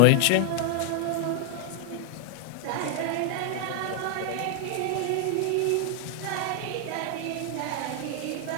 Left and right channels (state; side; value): different; both; correlation 0.00